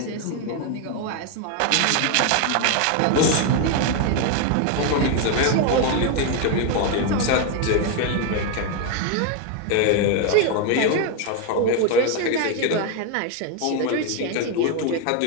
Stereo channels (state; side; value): different; both; correlation 0.01